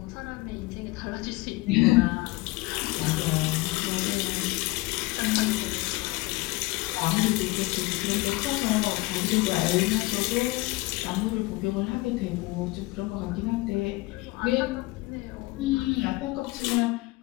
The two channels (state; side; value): quieter; right; 21.9 dB